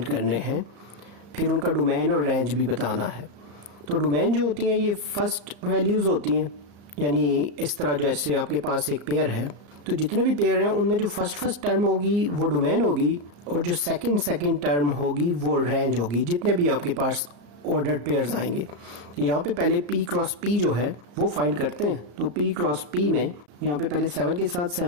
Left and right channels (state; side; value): late; left; 34 ms